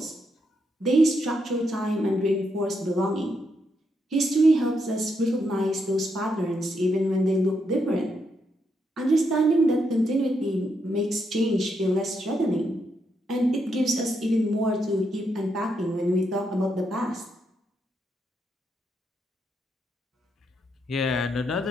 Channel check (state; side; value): normal; both; correlation 0.80